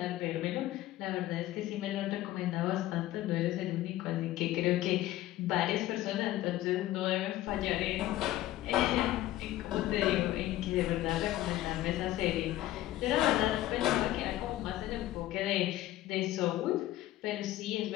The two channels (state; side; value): quieter; right; 15.0 dB